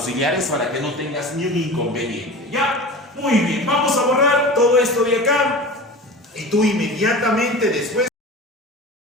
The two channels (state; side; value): normal; both; correlation 0.34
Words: para que no tengas ni un inconveniente. ¿Ya? Muy bien, vamos a borrar todo esto de acá. Y tú inmediatamente después